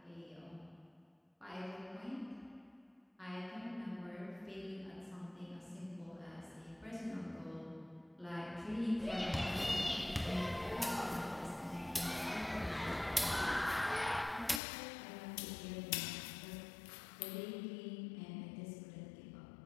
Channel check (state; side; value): drops out; right; at 14.6 s